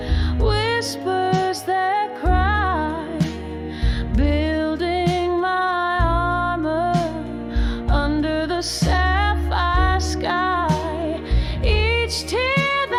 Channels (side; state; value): both; identical; correlation 1.00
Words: whispers that cry, building my armor under the sapphire sky. Each tear